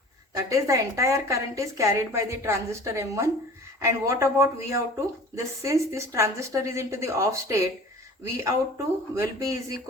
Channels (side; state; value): both; normal; correlation 0.43